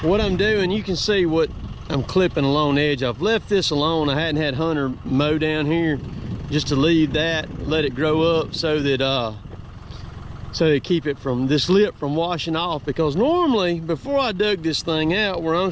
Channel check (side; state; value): both; identical; correlation 1.00